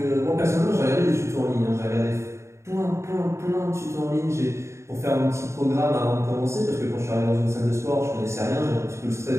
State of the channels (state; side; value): late; left; 0.14 ms